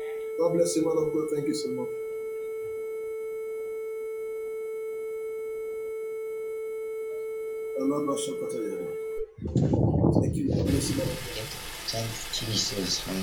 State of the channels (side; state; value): both; identical; correlation 1.00